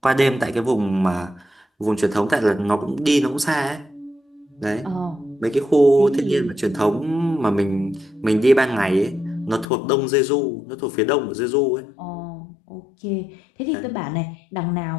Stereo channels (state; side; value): drops out; right; at 9.7 s